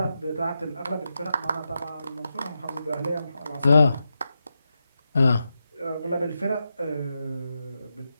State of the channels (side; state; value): both; inverted; correlation -0.88